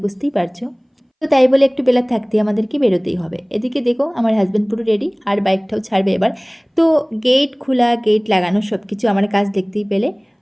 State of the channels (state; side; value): identical; both; correlation 1.00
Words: বুঝতেই পারছো। তো তাই বলে একটু বেলা থাকতেই আমাদেরকে বেরোতেই হবে। এদিকে দেখো আমার হাজব্যান্ড পুরো রেডি, আর বাইকটাও ছাড়বে এবার। তো গেট খোলা, গেট লাগানো সব কিছু আমার কাজ দেখতেই পেলে।